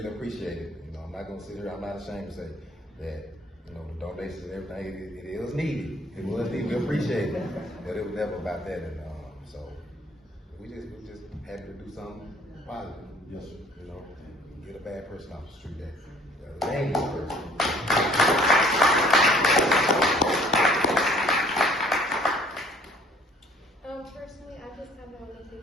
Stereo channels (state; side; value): normal; both; correlation 0.56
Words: appreciate it. You know, I'm not gonna sit here, I'm not ashamed to say that, you know, the donations and everything, it was needed. It was needed, we appreciate it. But it was never about that. And so we just happy to do something positive. Yes, sir. You know, get a bad person off the street, that dangerous person. Personally, I just kind of want to